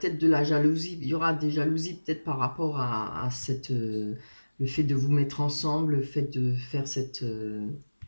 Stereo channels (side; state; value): both; inverted; correlation -1.00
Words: de la jalousie. Il y aura des jalousies peut-être par rapport à le fait de vous mettre ensemble, le fait de faire